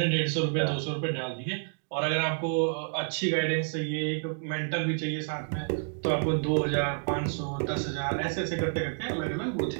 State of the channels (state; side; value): silent; left; 58 dB below the other